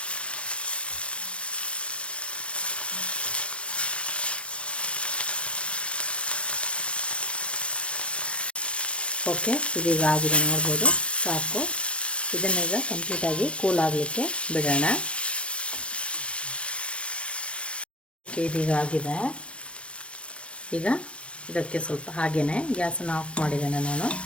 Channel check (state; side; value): late; right; 0.060 ms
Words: ಓಕೆ, ಇದೀಗ ಆಗಿದೆ ನೋಡ್ಬೋದು, ಸಾಕು. ಇದನ್ನೀಗ ಕಂಪ್ಲೀಟಾಗಿ ಕೂಲ್ ಆಗಲಿಕ್ಕೆ ಬಿಡೋಣ. ಓಕೆ, ಇದೀಗ ಆಗಿದೆ. ಈಗ ಇದಕ್ಕೆ ಸ್ವಲ್ಪ ಹಾಗೆಯೇ ಗ್ಯಾಸನ್ನು ಆಫ್ ಮಾಡಿದ್ದೇನೆ ನಾನು.